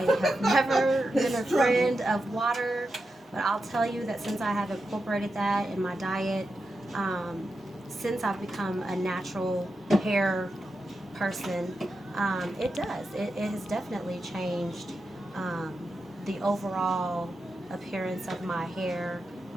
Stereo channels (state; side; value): normal; both; correlation 0.88